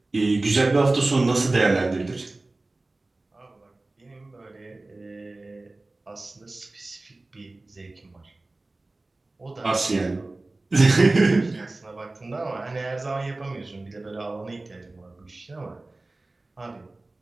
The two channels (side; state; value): left; quieter; 3.0 dB